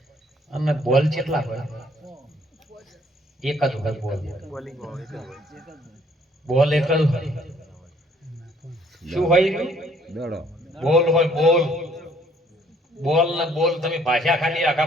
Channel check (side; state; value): both; normal; correlation 0.62